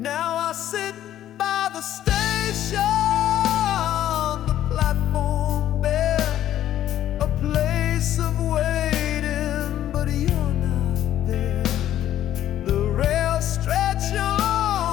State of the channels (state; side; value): quieter; right; 12.0 dB